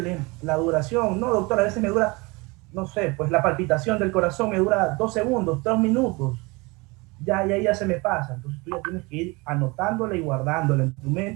la duración. No, doctor, a veces me dura, no sé, pues la palpitación del corazón me dura 2 segundos, 3 minutos. Ya se me pasa. Entonces tú ya tienes que ir anotándola y guardándola en tu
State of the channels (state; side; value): quieter; left; 25.7 dB